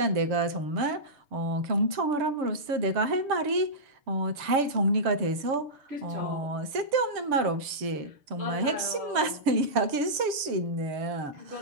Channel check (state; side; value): late; left; 6.9 ms